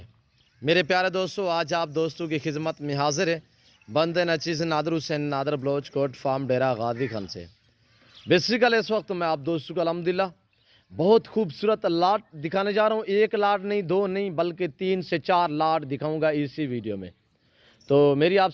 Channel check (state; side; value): identical; both; correlation 1.00